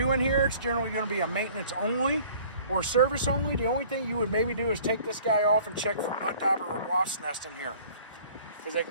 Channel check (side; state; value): both; inverted; correlation -0.51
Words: in here. It's generally going to be a maintenance only or service only. The only thing you would maybe do is take this guy off and check for mud dauber or wasp nest in here, because they can